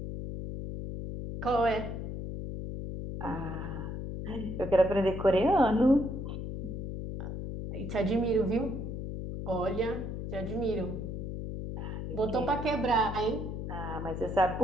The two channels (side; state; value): left; noise; hum, 5 dB below the sound